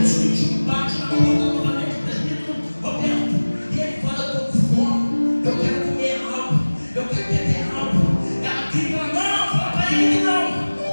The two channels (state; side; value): inverted; both; correlation -1.00